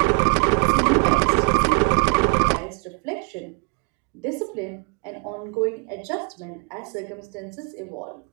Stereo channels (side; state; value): left; quieter; 34.9 dB